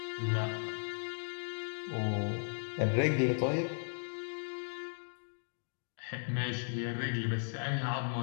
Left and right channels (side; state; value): right; silent; digital silence